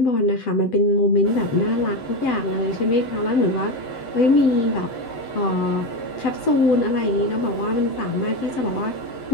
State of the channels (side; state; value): right; late; 7.9 ms